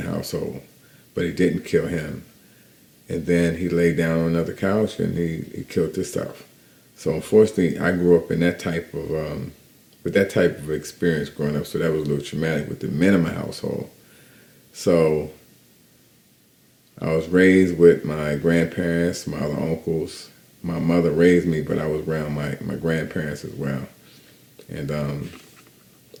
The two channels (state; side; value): identical; both; correlation 1.00